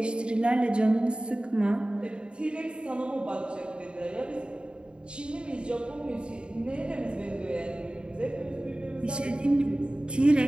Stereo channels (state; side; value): late; left; 0.052 ms